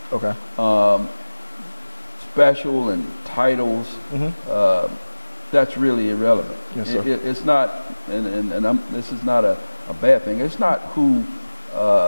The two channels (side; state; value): both; inverted; correlation -1.00